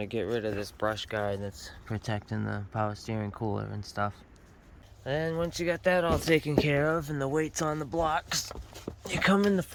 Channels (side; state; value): both; identical; correlation 1.00